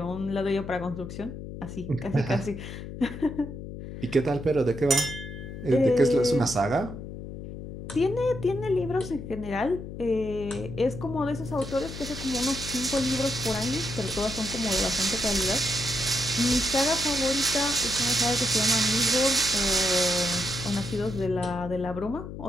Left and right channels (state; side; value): noise; left; hum, 10 dB below the sound